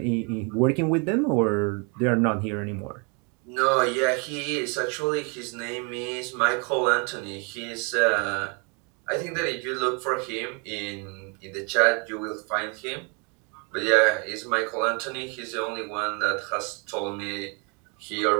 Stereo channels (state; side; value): quieter; left; 34.3 dB